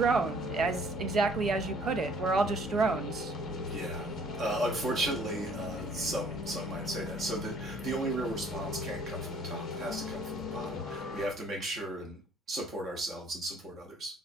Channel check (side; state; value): both; normal; correlation 0.58